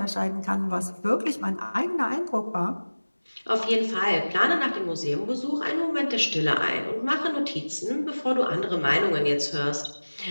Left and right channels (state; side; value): inverted; both; correlation -1.00